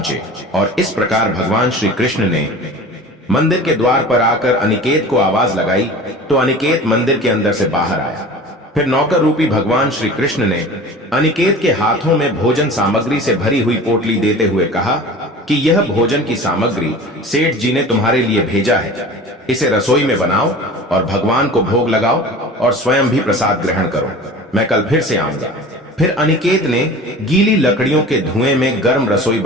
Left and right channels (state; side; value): normal; both; correlation 0.39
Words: और इस प्रकार भगवान श्री कृष्ण ने मंदिर के द्वार पर आकर अनिकेत को आवाज लगाई तो अनिकेत मंदिर के अंदर से बाहर आया। फिर नौकर रूपी भगवान श्री कृष्ण ने अनिकेत के हाथों में भोजन सामग्री से भरी हुई पोटली देते हुए कहा कि यह भोजन की सामग्री सेठ जी ने तुम्हारे लिए भेजा है। इसे रसोई में बनाओ और भगवान को भोग लगाओ और स्वयं भी प्रसाद ग्रहण करो। मैं कल फिर से आऊंगा। फिर अनिकेत ने गीली लकड़ियों के धुएं में गर्म रसोई